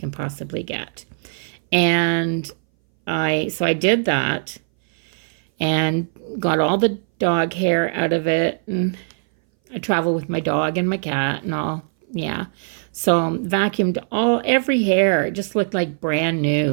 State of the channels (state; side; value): silent; left; 61 dB below the other